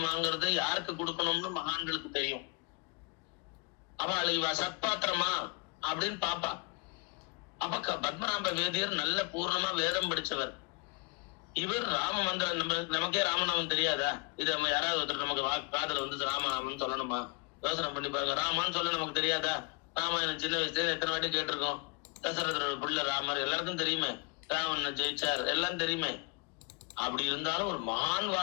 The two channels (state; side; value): quieter; right; 29.2 dB